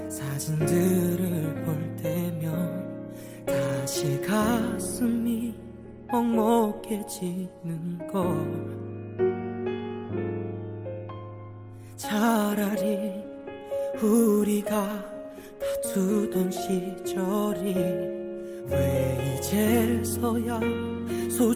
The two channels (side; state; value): both; identical; correlation 1.00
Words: 사진들을 볼 때면 다시 가슴이 먹먹해지는 걸. 차라리 우리가 다투던 시절이 왜 이제서야